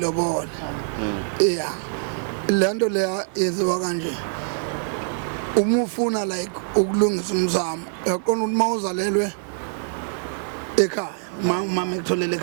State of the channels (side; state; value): left; silent; digital silence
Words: lento leya yenziwa kanje uma ufuna like ukulungisa umzamo yaqona ukuthi mawuzalelwe ekhaya mama ekutholela